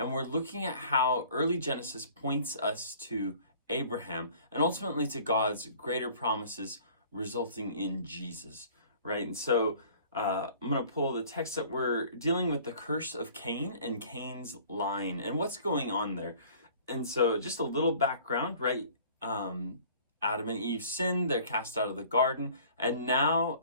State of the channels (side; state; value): both; inverted; correlation -0.51